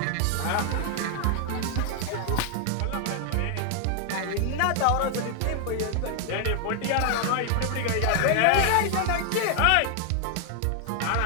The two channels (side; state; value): both; different; correlation 0.00